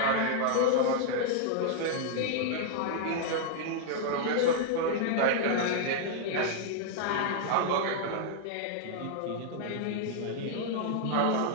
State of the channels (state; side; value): different; both; correlation -0.01